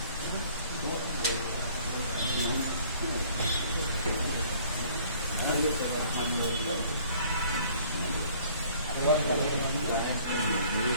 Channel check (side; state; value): both; inverted; correlation -0.56